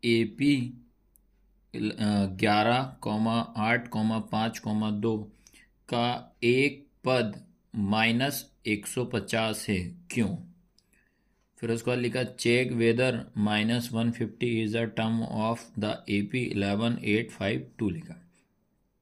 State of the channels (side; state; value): both; identical; correlation 1.00